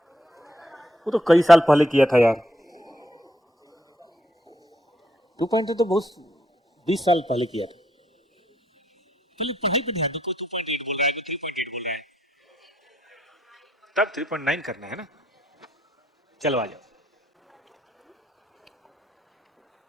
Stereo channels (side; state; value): both; normal; correlation 0.73